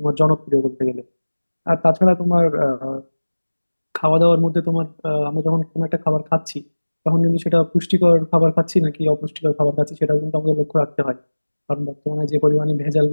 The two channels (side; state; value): both; inverted; correlation -1.00